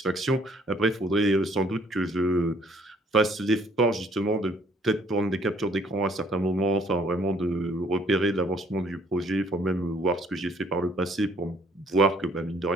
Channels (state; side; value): normal; both; correlation 0.61